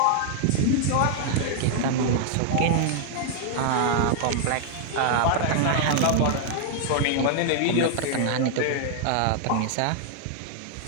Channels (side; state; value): both; different; correlation 0.00